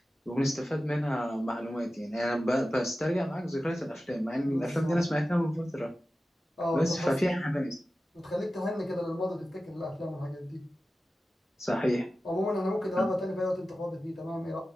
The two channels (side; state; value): both; normal; correlation 0.94